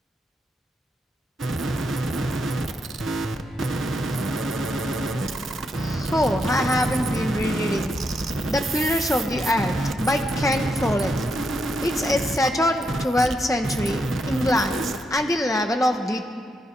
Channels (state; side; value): normal; both; correlation 0.80